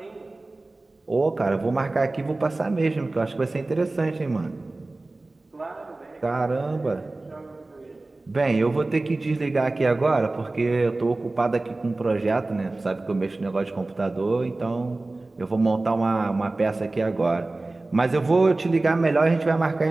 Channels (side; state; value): left; quieter; 3.1 dB